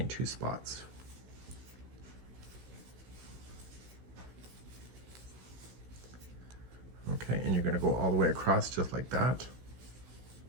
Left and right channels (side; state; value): left; late; 16 ms